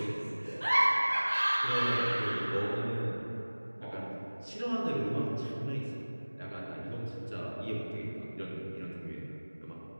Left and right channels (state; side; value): inverted; both; correlation -1.00